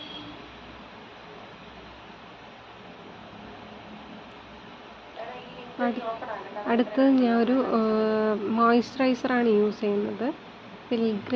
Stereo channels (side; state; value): both; identical; correlation 1.00